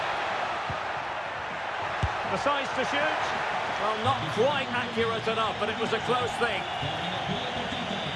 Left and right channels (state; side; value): identical; both; correlation 1.00